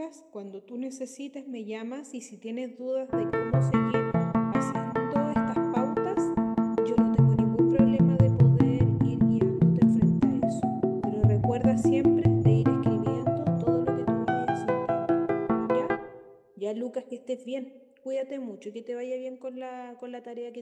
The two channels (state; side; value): identical; both; correlation 1.00